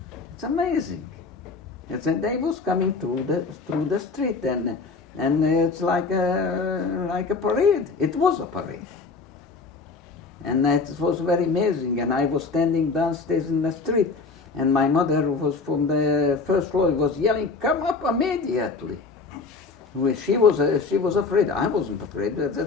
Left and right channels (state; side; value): quieter; right; 4.3 dB